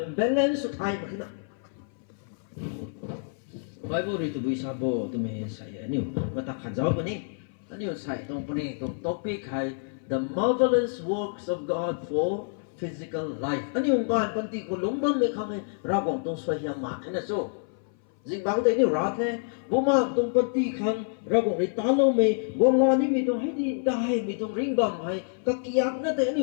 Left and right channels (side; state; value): right; silent; 57 dB below the other